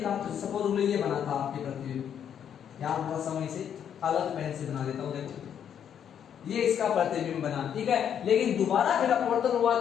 तो सपोज ये बना था आपके प्रतिबिंब, यहां थोड़ा सा मैं इसे अलग पेन से बना देता हूं, देखो ये इसका प्रतिबिंब बना, ठीक है। लेकिन दोबारा फिर अपवर्तन हुआ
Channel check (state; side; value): quieter; right; 8.8 dB